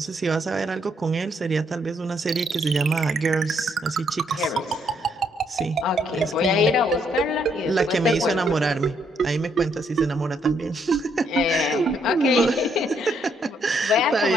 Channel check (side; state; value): both; normal; correlation 0.72